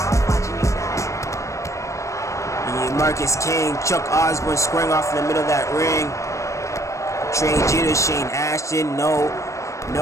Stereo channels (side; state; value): right; late; 0.15 ms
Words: Marcus King, Chuck Osborne squaring off in the middle of that ring. Trey Jeter, Shane Ashton, no